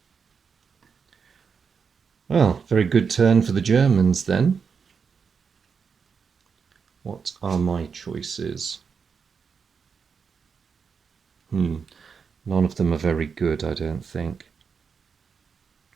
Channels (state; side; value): quieter; left; 6.0 dB